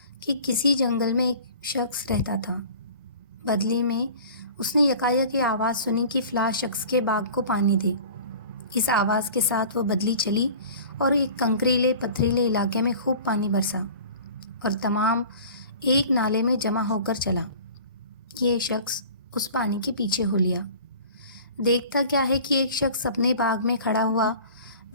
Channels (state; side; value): inverted; both; correlation -0.43